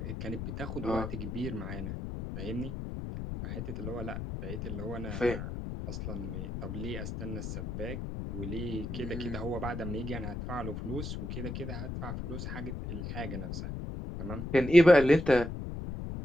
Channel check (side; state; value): left; noise; rumble, 5 dB below the sound